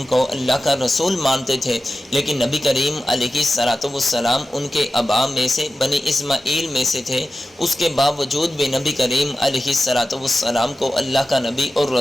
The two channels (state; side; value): normal; both; correlation 0.93